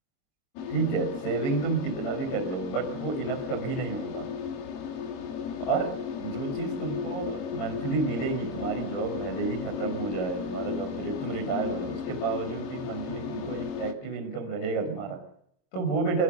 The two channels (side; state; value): right; late; 22 ms